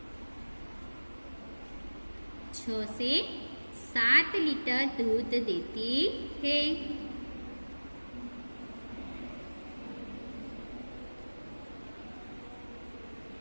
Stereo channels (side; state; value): both; inverted; correlation -1.00